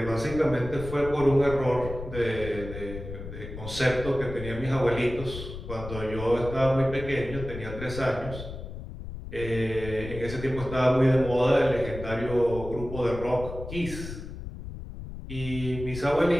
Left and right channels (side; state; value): left; noise; rumble, 10 dB below the sound